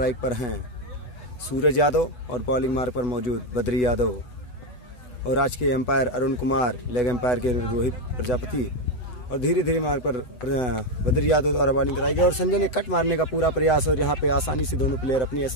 पर हैं सूरज यादव और बॉलिंग मार्ग पर मौजूद बद्री यादव और आज के umpire Arun Kumar, leg umpire के रोहित प्रजापति और धीरे धीरे मार्ग पर बद्री यादव द्वारा बॉलिंग कराई गई और संजय ने कट मारने का पूरा प्रयास और यहाँ पे आसानी से दोनों प्लेयर अपने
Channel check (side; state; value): right; late; 8.1 ms